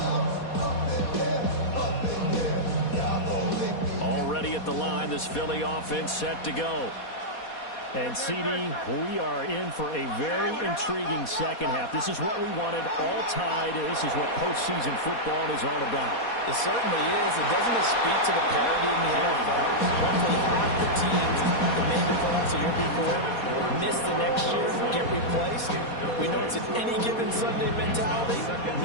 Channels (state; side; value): late; right; 4.2 ms